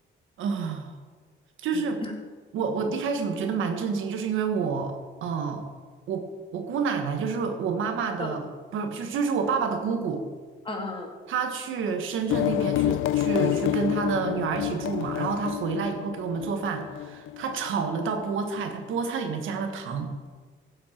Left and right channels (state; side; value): normal; both; correlation 0.26